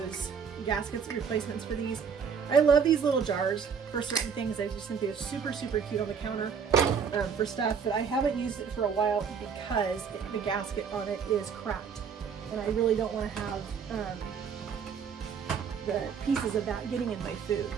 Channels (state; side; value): quieter; left; 6.6 dB